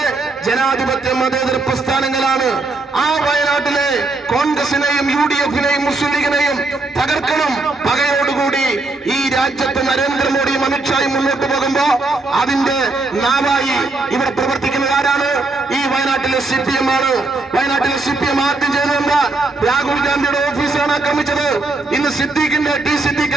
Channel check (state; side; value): quieter; left; 3.3 dB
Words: ജനാധിപത്യ മതേതര പ്രസ്ഥാനങ്ങളാണ്. ആ വയനാട്ടിലെ കോൺഗ്രസിനെയും UDF-നെയും മുസ്ലിം ലീഗിനെയും തകർക്കണം. പകയോടുകൂടി ഈ രാജ്യത്ത് നരേന്ദ്രമോദിയും അമിത്ഷായും മുന്നോട്ട് പോകുമ്പോ അതിന്റെ നാവായി ഇവിടെ പ്രവർത്തിക്കുന്നത് ആരാണ്? ഈ വയനാട്ടിലെ CPM ആണ്. വയനാട്ടിലെ CPM ആദ്യം ചെയ്തതെന്താ? രാഹുൽ ഗാന്ധിയുടെ ഓഫീസാണ് ആക്രമിച്ചത്. ഇന്ന് സിദ്ദീഖ്